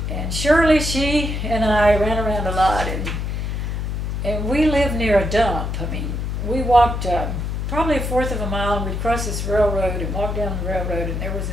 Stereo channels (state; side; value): noise; left; hum, 2 dB below the sound